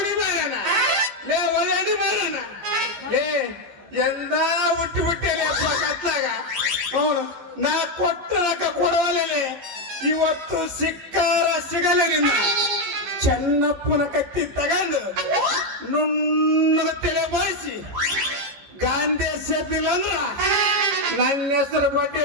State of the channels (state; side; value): late; left; 15 ms